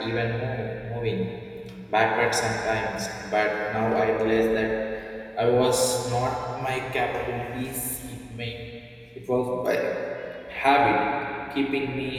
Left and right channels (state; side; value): identical; both; correlation 1.00